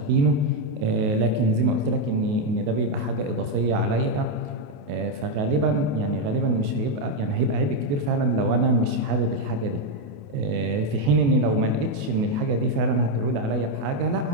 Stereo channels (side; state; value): left; late; 28 ms